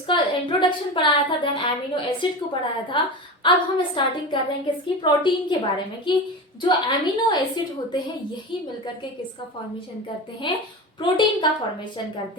इंट्रोडक्शन पढ़ाया था, देन एमिनो एसिड को पढ़ाया था। अब हम स्टार्टिंग कर रहे हैं किसकी, प्रोटीन के बारे में, कि जो एमिनो एसिड होते हैं यही मिलकर के किसका फॉर्मेशन करते हैं, प्रोटीन का फॉर्मेशन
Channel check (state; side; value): normal; both; correlation 0.26